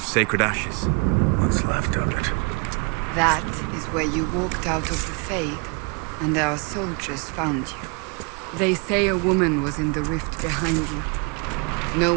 Sacred Ashes. What's left of it? That is where you walked out of the Fade, and our soldiers found you. They say a woman was in the rift behind you. No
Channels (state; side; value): quieter; left; 32.4 dB